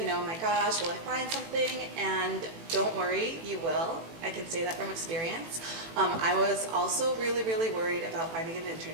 oh my gosh, will I find something? And don't worry, you will. I can say that from experience. I was also really, really worried about finding an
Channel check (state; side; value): late; left; 18 ms